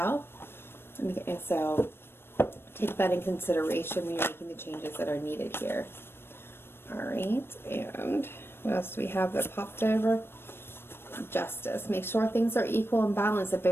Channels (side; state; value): right; late; 0.11 ms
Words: And so take that in consideration when you're making the changes that are needed here. All right, and what else do we have that popped over? Justice. Make sure things are equal and balanced, that